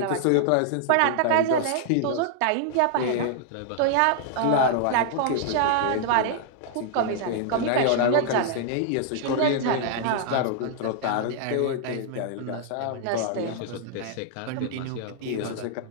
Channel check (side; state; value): both; different; correlation -0.01